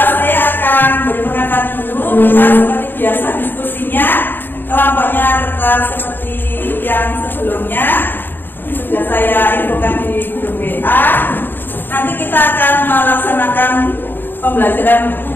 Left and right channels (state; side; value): late; right; 0.096 ms